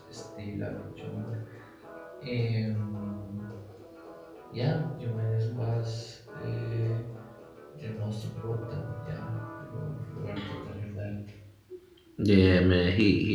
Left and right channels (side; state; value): both; identical; correlation 1.00